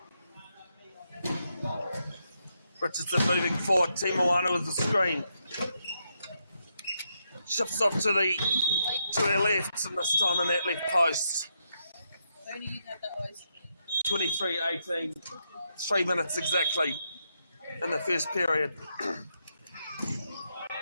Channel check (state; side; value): inverted; both; correlation -0.81